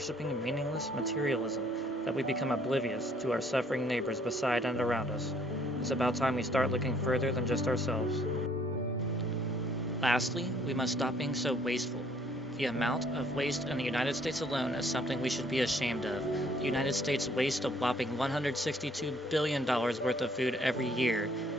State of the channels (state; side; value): normal; both; correlation 0.63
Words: meaningless materialism that we become oblivious to our suffering neighbors beside and around us. It's about time we start looking further than just ourselves. Lastly, we must stop being so wasteful. The amount of waste in the United States alone is something we should be ashamed of. The United States wastes a whopping $162 billion worth of food every year.